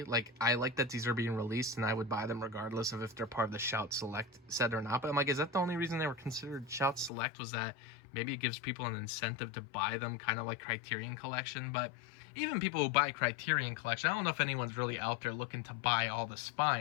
Like, I like that these are being released, and I would buy them regardless of if they're part of the Shout Select set or not. But I'm like, is that the only reason they were considered Shout Select, was that maybe it gives people an incentive to buy them, kind of like Criterion Collection? But even people who buy Criterion Collection, I don't know if anyone's really out there looking to buy all the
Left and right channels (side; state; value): right; drops out; at 7.1 s